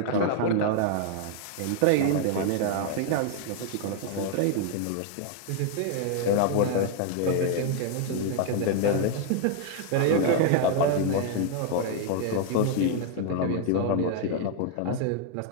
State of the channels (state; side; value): different; both; correlation 0.00